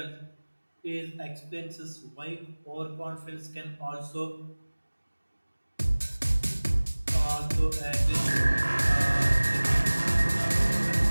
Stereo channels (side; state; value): both; inverted; correlation -1.00